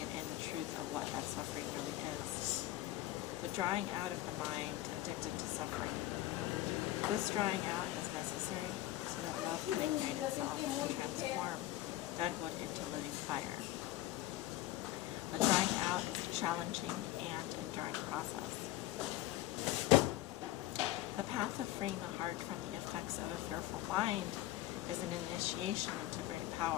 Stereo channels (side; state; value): right; quieter; 15.3 dB